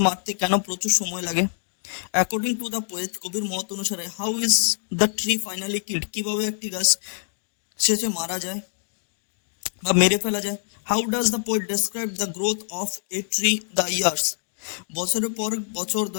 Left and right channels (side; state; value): right; silent; digital silence